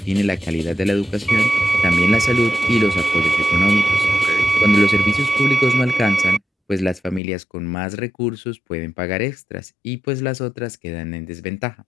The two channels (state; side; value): drops out; right; at 7.2 s